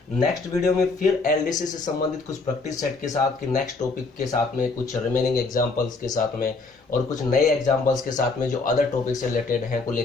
नेक्स्ट वीडियो में फिर एलडीसी से संबंधित कुछ प्रैक्टिस सेट के साथ कि नेक्स्ट टॉपिक के साथ में, कुछ रिमेनिंग एग्जाम्पल्स के साथ में और कुछ नए एग्जाम्पल्स के साथ में जो अदर टॉपिक से रिलेटेड हैं को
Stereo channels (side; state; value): right; quieter; 3.9 dB